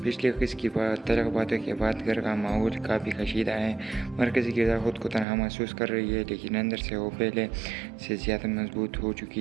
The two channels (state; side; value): drops out; left; at 5.2 s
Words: پچھلے قسط کی تلخ باتوں کے بعد گھر کا ماحول کافی کشیدہ ہے. مرکزی کردار خود کو تنہا محسوس کر رہی ہے لیکن اندر سے وہ پہلے سے زیادہ مضبوط ہو